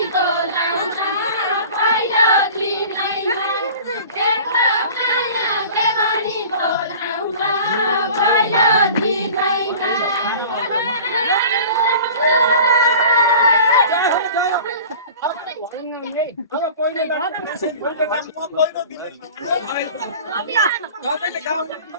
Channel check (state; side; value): inverted; both; correlation -0.41